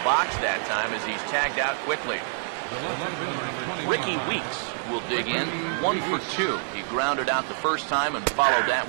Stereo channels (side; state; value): left; silent; digital silence